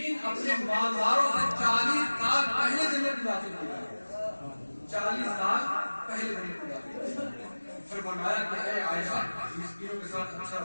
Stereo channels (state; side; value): inverted; both; correlation -1.00